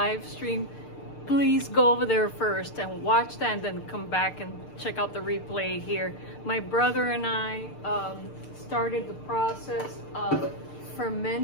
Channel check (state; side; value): late; right; 6.7 ms